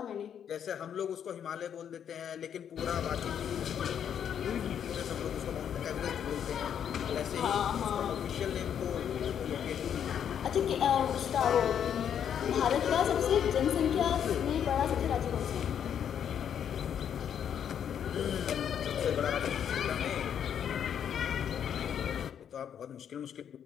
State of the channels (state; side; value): quieter; right; 8.8 dB